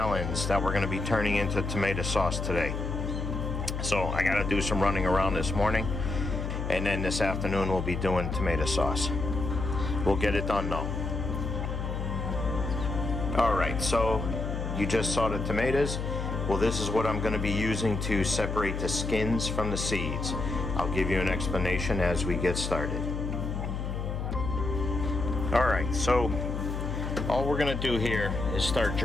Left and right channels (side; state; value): left; noise; hum, 3 dB below the sound